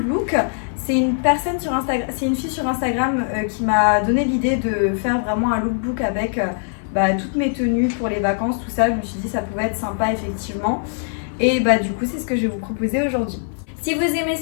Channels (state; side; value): silent; right; 56 dB below the other